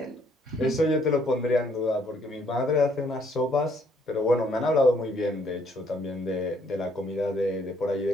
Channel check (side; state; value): both; normal; correlation 0.66